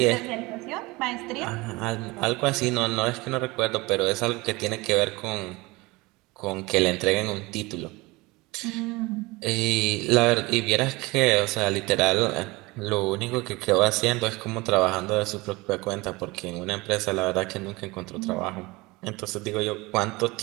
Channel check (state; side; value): quieter; left; 22.9 dB